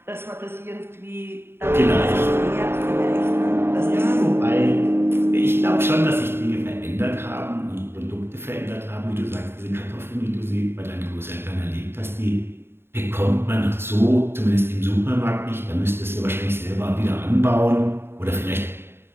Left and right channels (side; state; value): left; late; 0.11 ms